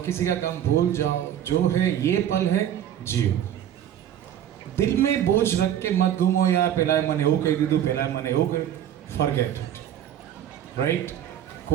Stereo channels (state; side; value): quieter; left; 10.6 dB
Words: किसी का काम भूल जाओ, जो है ये पल है जियो. दिल में बोझ रख के मत घूमो यार, पहला मने हो कह दीदू, पहला मने हो गए, फॉरगेट इट, राइट.